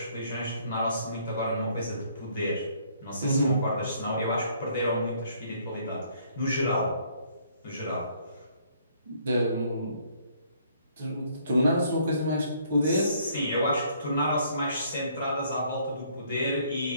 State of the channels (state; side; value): inverted; both; correlation -0.64